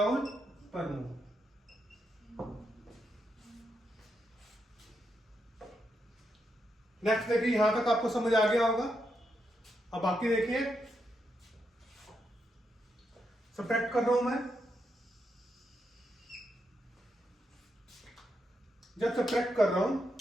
पर मोल। नेक्स्ट देखिए, यहां तक आपको समझ आ गया होगा। अब बाकी देखिए, सब्ट्रैक्ट कर रहा हूं मैं। जब सब्ट्रैक्ट कर रहा हूं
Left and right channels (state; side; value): normal; both; correlation 0.82